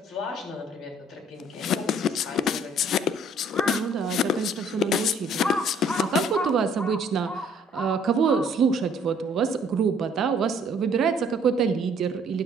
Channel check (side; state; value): both; normal; correlation 0.59